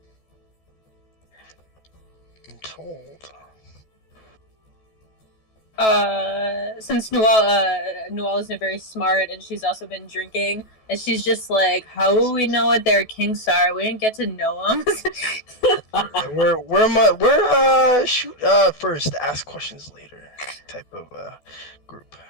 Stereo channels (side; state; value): right; late; 14 ms